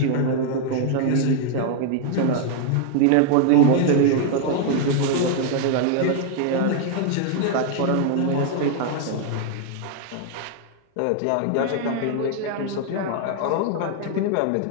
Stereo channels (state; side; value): different; both; correlation 0.00